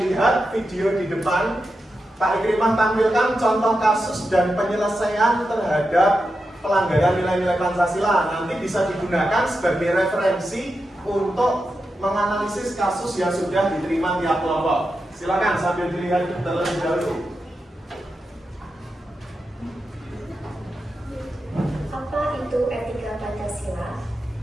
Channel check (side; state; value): both; normal; correlation 0.89